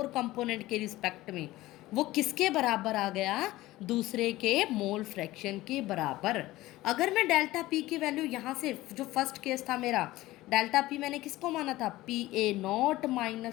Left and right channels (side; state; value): right; quieter; 17.4 dB